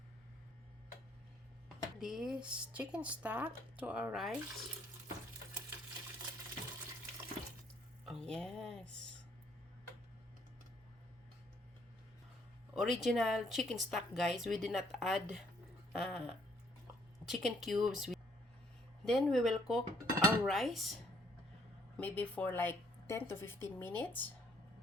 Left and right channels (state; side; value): normal; both; correlation 0.66